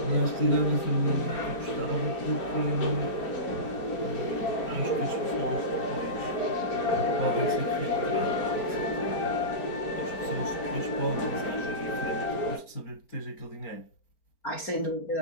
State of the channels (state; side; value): late; right; 4.4 ms